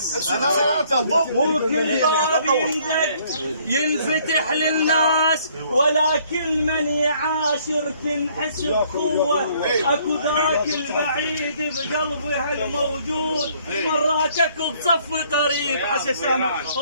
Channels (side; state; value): both; inverted; correlation -0.63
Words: وكل باب يندق ينفتح للناس، ولكن من يعاشر تنحس بقوة، اكو ذاك البعيد بقلبها الموجود، مراتك بصف قريب حسن سامع